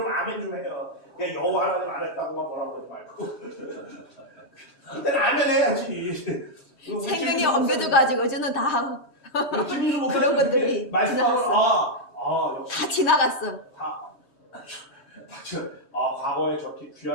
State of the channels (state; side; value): late; right; 3.2 ms